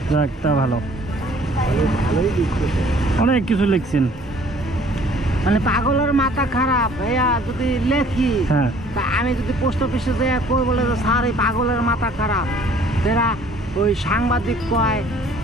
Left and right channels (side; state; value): both; normal; correlation 0.56